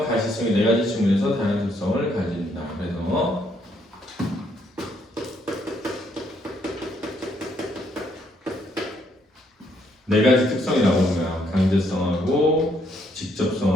가시성이 네 가지 측면에서 다양한 특성을 가진다. 그래서 네 가지 특성이 나오는 거야. 강제성하고,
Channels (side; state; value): both; normal; correlation 0.71